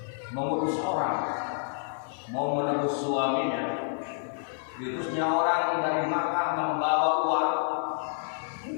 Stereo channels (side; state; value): right; silent; digital silence